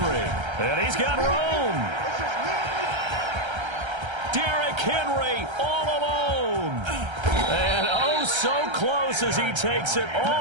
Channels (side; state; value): left; late; 1.3 ms